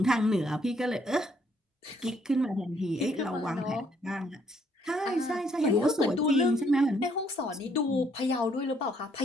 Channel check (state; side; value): normal; both; correlation 0.68